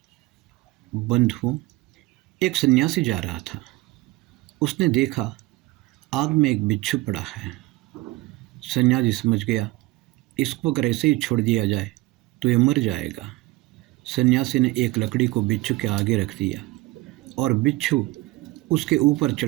बंधुओं, एक सन्यासी जा रहा था। उसने देखा आग में एक बिच्छू पड़ा है। सन्यासी समझ गया, इसको अगर ऐसे ही छोड़ दिया जाए तो ये मर जाएगा। सन्यासी ने एक लकड़ी को बिच्छू के आगे रख दिया और बिच्छू उसके ऊपर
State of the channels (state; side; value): quieter; left; 20.1 dB